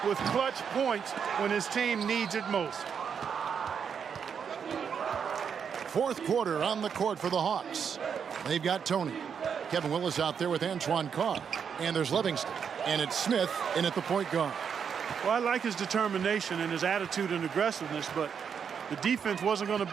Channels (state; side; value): quieter; left; 7.1 dB